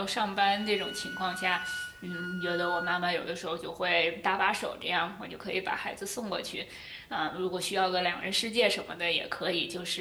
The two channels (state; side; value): identical; both; correlation 1.00